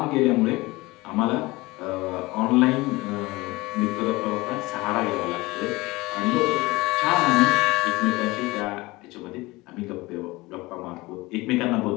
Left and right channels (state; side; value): quieter; right; 21.4 dB